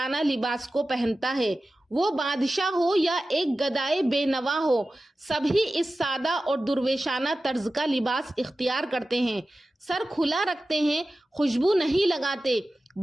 लिबास को पहनता है। वो बादशाह हो या एक गदाए बेनवा हो, सभी इस सादा और दुर्वेशाना तर्ज का लिबास इख्तियार करते हैं। सर खुला रखते हैं, खुशबू नहीं लगाते,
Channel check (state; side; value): normal; both; correlation 0.94